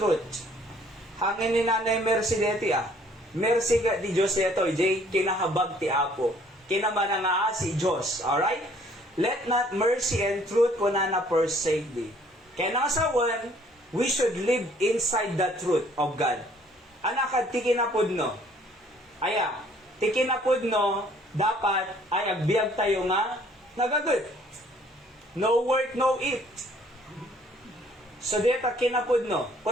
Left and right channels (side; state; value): both; normal; correlation 0.59